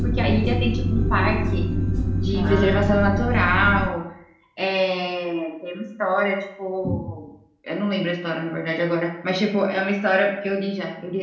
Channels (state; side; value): identical; both; correlation 1.00